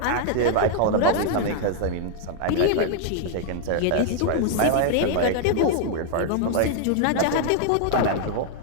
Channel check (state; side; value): different; both; correlation 0.00